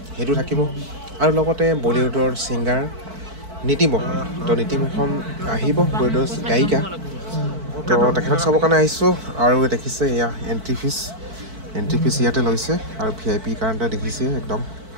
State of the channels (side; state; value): left; late; 4.5 ms